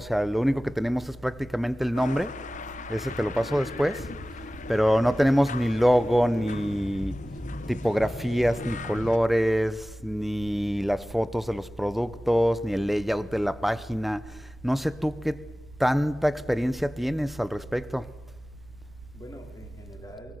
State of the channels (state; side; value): noise; right; rumble, 21 dB below the sound